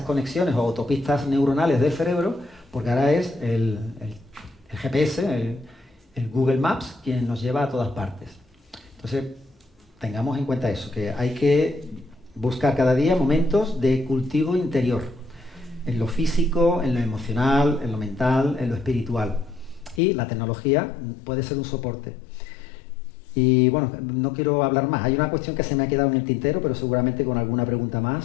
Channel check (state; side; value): drops out; right; at 20.0 s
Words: conexiones o autopistas neuronales del cerebro, porque ahora es el GPS, el Google Maps, quien nos lleva a todas partes. Entonces, tengamos en cuenta eso, que hay que buscar cada día momentos de cultivo interior, en lo físico, en lo emocional, en lo mental, en lo espiritual. Y la tecnología puede ser un soporte. Y bueno, no quiero hablar más. Hay una cuestión que se me ha quedado en el tintero, pero seguramente con alguna pregunta